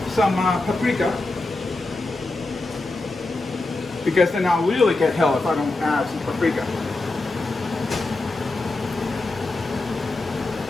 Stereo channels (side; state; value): right; quieter; 3.1 dB